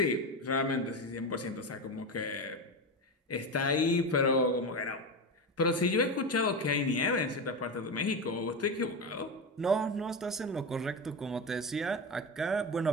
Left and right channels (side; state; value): both; normal; correlation 0.18